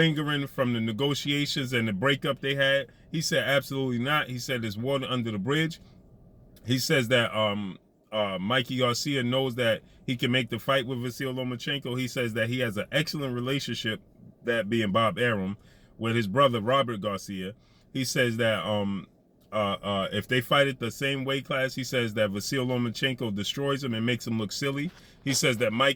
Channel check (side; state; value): both; identical; correlation 1.00